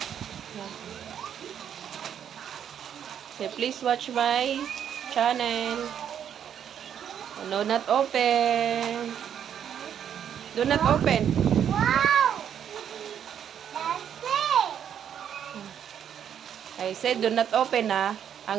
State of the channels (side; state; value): left; quieter; 9.0 dB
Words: Say, please watch my channel. Do not open. Do not open. Wow! That's it! I said, do not open, ha?